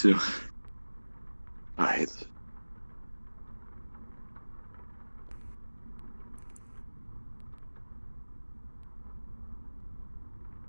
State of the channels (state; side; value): inverted; both; correlation -1.00